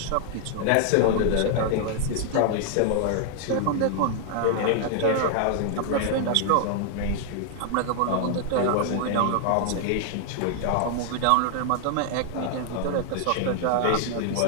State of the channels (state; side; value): different; both; correlation 0.00